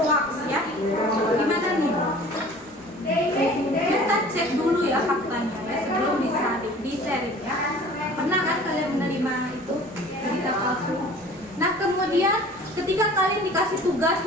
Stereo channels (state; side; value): normal; both; correlation 0.46